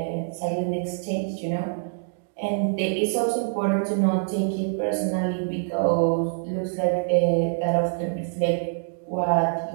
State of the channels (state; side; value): silent; left; digital silence